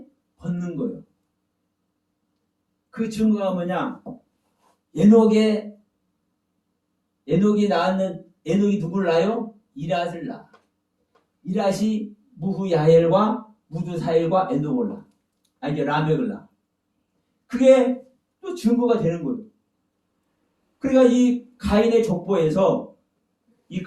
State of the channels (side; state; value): both; identical; correlation 1.00